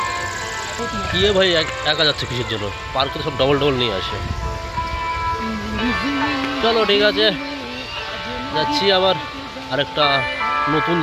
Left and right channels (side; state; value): both; identical; correlation 1.00